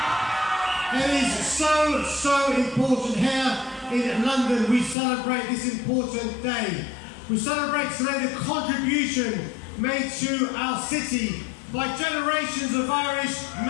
It is so important here in London. We celebrate this important day. We celebrate today the contribution made to our city by generations of Irish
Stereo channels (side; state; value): right; drops out; at 5.0 s